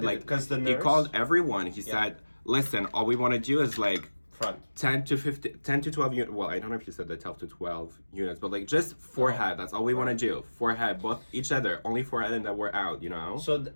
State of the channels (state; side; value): inverted; both; correlation -1.00